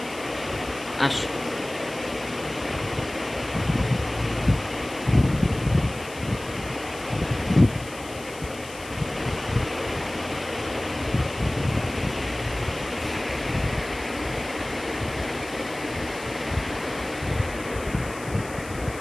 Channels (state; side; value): noise; left; hiss, 16 dB below the sound